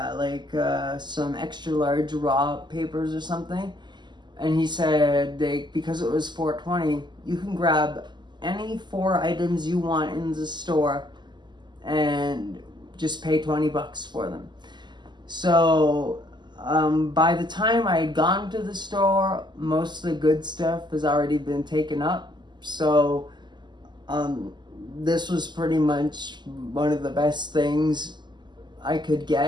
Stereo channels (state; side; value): late; left; 0.21 ms